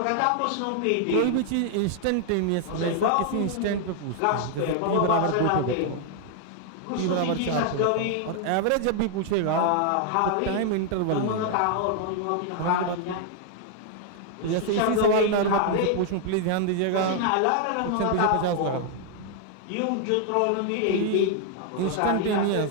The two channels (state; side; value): different; both; correlation 0.00